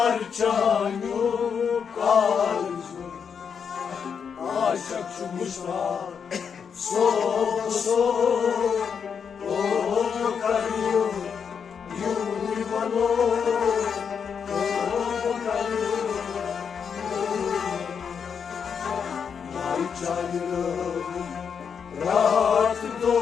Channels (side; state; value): right; quieter; 6.8 dB